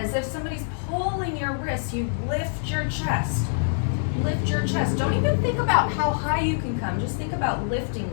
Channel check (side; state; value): right; silent; 62 dB below the other